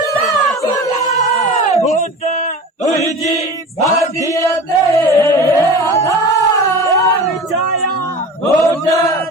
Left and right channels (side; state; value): both; normal; correlation 0.35